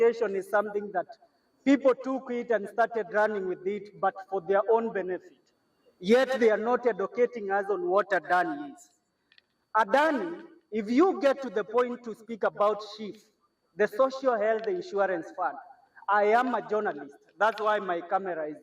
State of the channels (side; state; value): both; identical; correlation 1.00